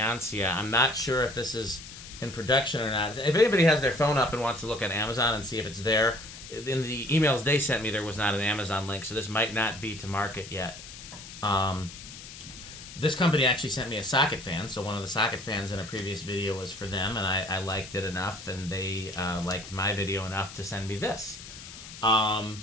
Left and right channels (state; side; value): noise; left; hiss, 14 dB below the sound